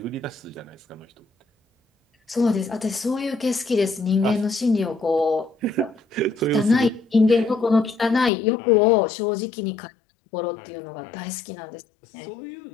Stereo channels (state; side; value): drops out; right; at 8.3 s